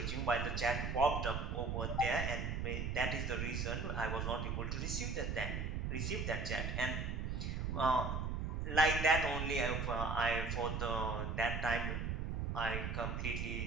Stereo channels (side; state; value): right; noise; rumble, 1 dB below the sound